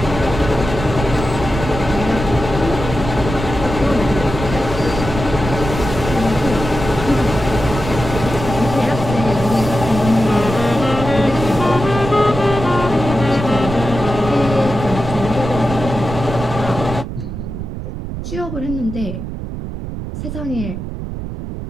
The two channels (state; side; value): noise; right; rumble, 7 dB below the sound